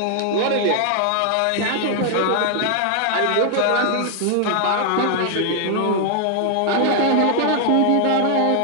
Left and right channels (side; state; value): both; different; correlation 0.00